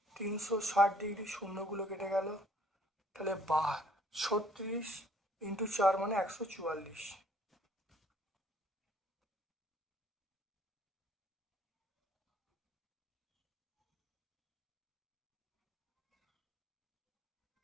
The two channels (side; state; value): both; normal; correlation 0.60